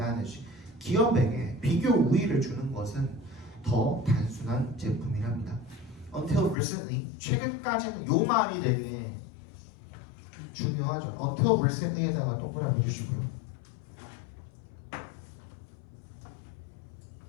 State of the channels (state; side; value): drops out; right; at 6.6 s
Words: 기업에게 비교 우위를 주는 것은 더 단순한 제품이랍니다. Until recently, 최근까지는 요 말이 되게 중요하죠. Until recently에다가 동그라미 해주시고요.